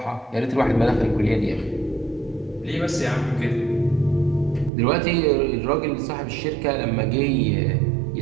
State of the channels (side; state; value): left; drops out; at 4.7 s